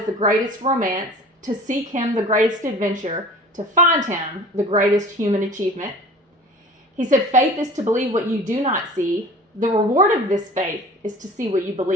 the greatest romance. To seek him, the greatest adventure. To find him, the greatest human achievement. He said, faith is to believe what you do not see. The reward of this faith is to see what you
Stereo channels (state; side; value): normal; both; correlation 0.42